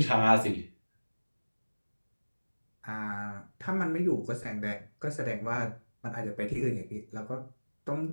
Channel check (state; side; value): inverted; both; correlation -1.00